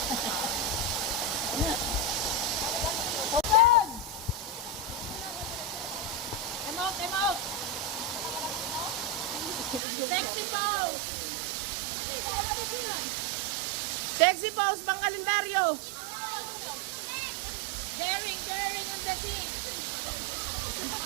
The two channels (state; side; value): drops out; left; at 9.8 s